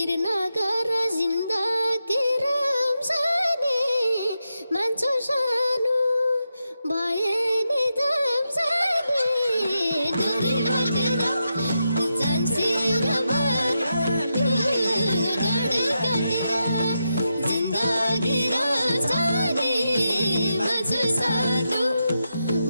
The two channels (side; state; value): both; inverted; correlation -0.87